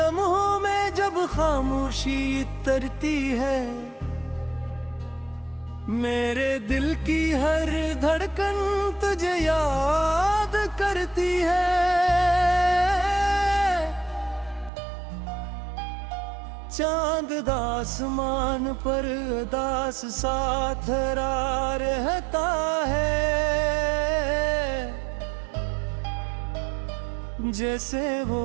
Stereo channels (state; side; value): drops out; left; at 14.7 s